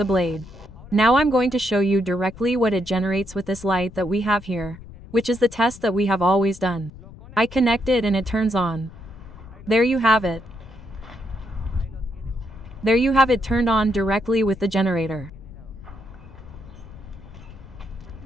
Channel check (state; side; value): noise; left; rumble, 18 dB below the sound